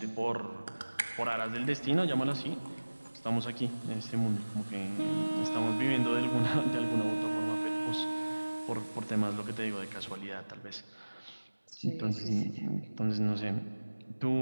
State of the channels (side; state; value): both; inverted; correlation -1.00